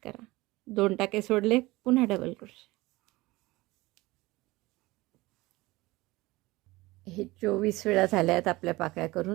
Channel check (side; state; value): left; quieter; 20.5 dB